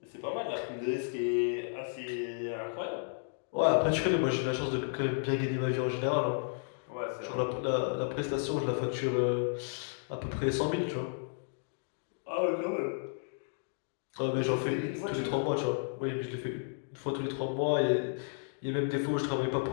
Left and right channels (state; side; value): silent; right; digital silence